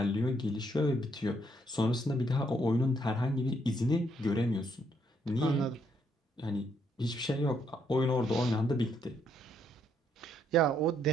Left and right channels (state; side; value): normal; both; correlation 0.72